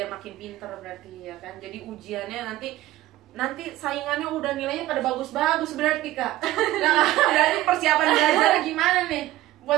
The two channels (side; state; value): left; quieter; 16.0 dB